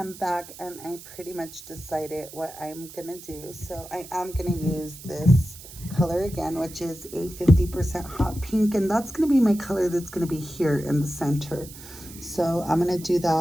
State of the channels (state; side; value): noise; right; hiss, 16 dB below the sound